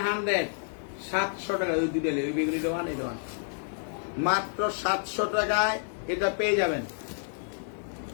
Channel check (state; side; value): silent; right; digital silence